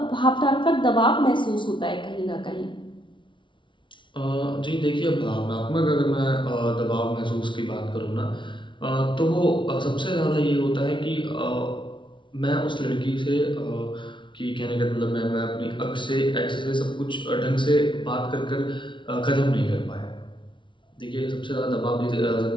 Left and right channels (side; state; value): right; late; 0.24 ms